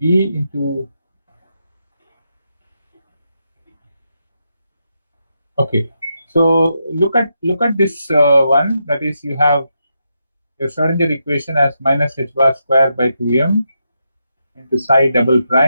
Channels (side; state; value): both; inverted; correlation -0.83